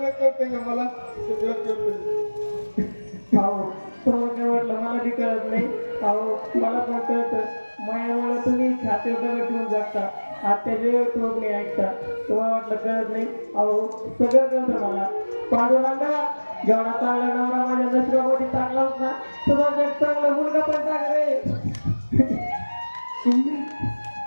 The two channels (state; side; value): inverted; both; correlation -1.00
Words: कळतंय का मला सगळं कळतंय अहो तुम्हाला काय वाटलं मला बी कळत नाही. अहो मला पण कळतं मायामुळे तुम्ही छाती वगैरे ठेवून जगता आत्याचे टोक नाही ऐकता. तुम्हाला वाटलं कळत नाही. अहो सगळं कळतं मला. पांडुरंगा जेवढा चांगला नवरा माझ्या नशिबापोटी चांगला होता तुझा जग चांगला मुलगा पण चांगला रे. सुमने